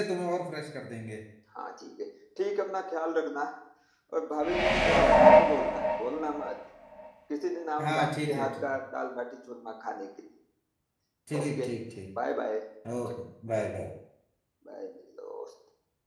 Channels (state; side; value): identical; both; correlation 1.00